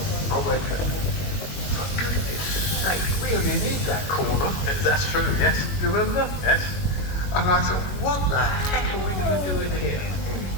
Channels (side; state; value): right; late; 21 ms